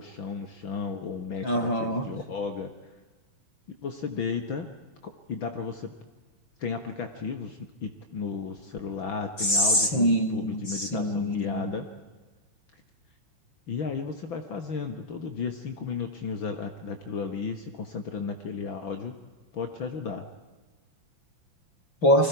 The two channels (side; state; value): right; late; 5.8 ms